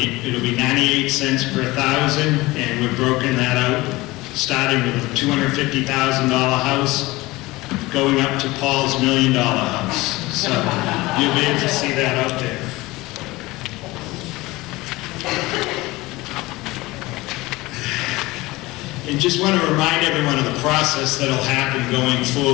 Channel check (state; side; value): quieter; right; 20.4 dB